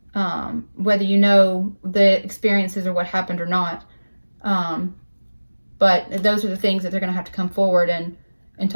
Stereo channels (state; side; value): inverted; both; correlation -1.00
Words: whether you know the experiences or what happened or not. But those are the things that they're going to have to come forward and